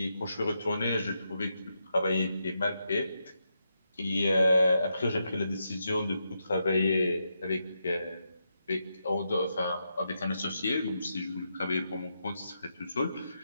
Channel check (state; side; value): inverted; both; correlation -0.84